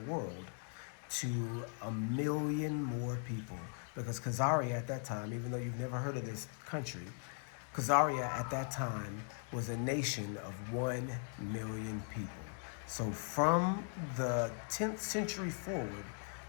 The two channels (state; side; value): silent; right; 52 dB below the other